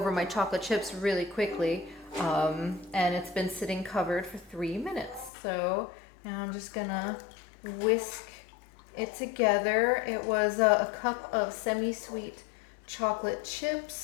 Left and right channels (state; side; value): drops out; right; at 5.3 s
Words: my chocolate chips really quickly. And it's been sitting covered for 3 minutes. So now I'm just gonna whisk it together. It was a cup of semi-sweet chocolate